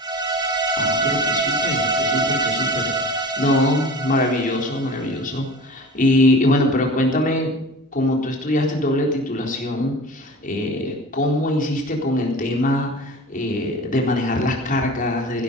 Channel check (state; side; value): normal; both; correlation 0.38